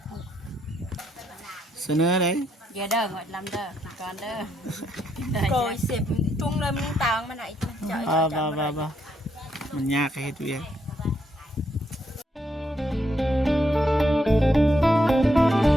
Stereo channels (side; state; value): both; normal; correlation 0.76